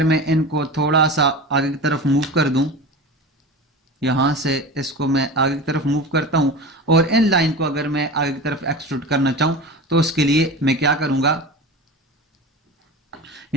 मैं इनको थोड़ा सा आगे की तरफ मूव कर दूं, यहां से इसको मैं आगे की तरफ मूव करता हूं और इन लाइन को अगर मैं आगे की तरफ एक्सट्रूड करना चाहूं तो उसके लिए मैं क्या करूंगा,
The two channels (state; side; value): normal; both; correlation 0.30